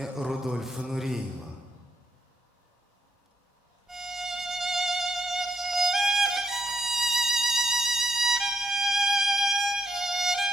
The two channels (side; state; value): both; normal; correlation 0.77